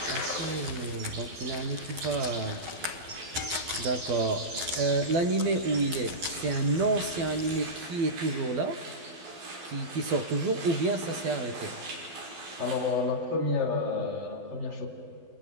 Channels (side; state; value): left; late; 12 ms